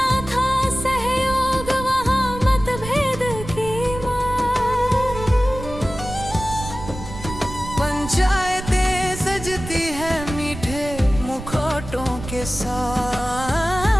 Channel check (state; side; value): noise; right; rumble, 10 dB below the sound